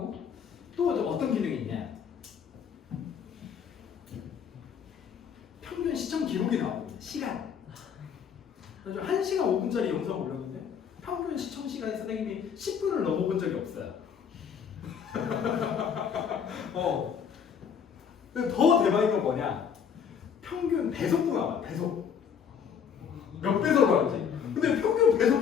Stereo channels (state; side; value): quieter; right; 7.4 dB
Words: 또 어떤 기능이 있냐? 평균 시청 기록이 나오고 시간. 그래서 1시간 5분짜리 영상 올렸는데 평균 시청 시간이 선생님이 10분을 넘어본 적이 없어요. 근데 더 대박인 건 뭐냐? 평균 배속도 나와. 배속. 몇 배속을 하는지. 근데 평균